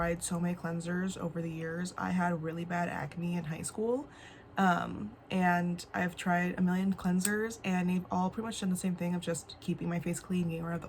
so many cleansers over the years. I had really bad acne in high school. And I've tried a million cleansers and they've all pretty much done the same thing of just keeping my face clean, getting rid of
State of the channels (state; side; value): identical; both; correlation 1.00